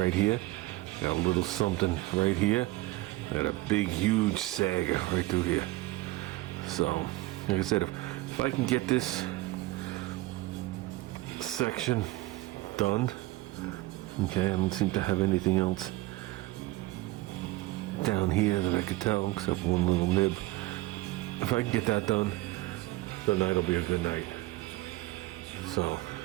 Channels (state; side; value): quieter; left; 19.3 dB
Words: here. Got a little something right here. I got a big, huge sag right through here. So, like I said, if I can get this section done, okay, I don't seem to have anything else down here that I could tell except one little nib. If I can get that done, the night will be a good night. So,